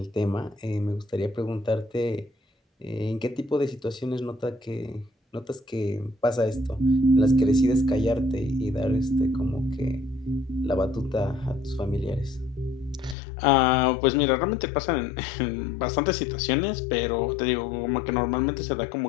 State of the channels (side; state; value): right; drops out; at 13.2 s